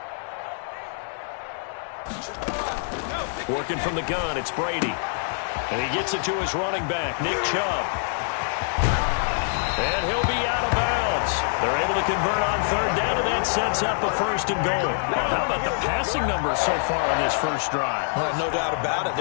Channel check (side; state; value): right; silent; digital silence